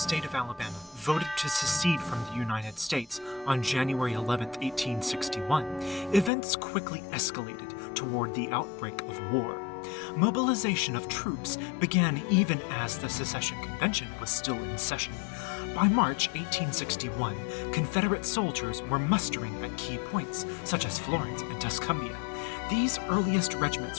of Alabama voted to secede from the United States on January 11, 1861, events quickly escalated toward the outbreak of war. Mobilization of troops began even as the secession convention was still in session. By March 1861, Confederate soldiers were mustering at key points, such as Florence and Tuscumbia. These earliest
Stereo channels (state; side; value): drops out; right; at 6.3 s